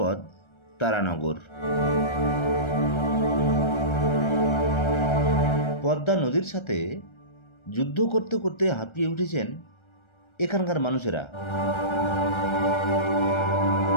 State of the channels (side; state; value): right; late; 1.3 ms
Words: তারানগর। পদ্মা নদীর সাথে যুদ্ধ করতে করতে হাঁপিয়ে উঠেছেন এখানকার মানুষেরা।